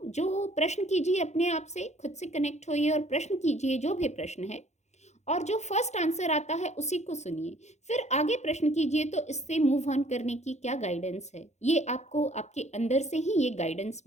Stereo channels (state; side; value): late; right; 0.33 ms